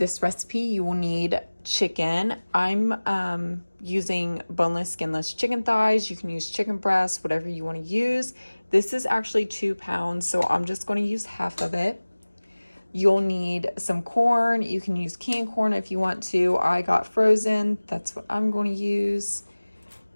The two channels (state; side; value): inverted; both; correlation -1.00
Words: recipe, you will need chicken. I'm using boneless, skinless chicken thighs. You can use chicken breasts, whatever you want to use. This is actually 2 pounds, so I'm just going to use half of it. You'll need some corn. You can use canned corn if you want to. I got frozen. That's what I'm going to use.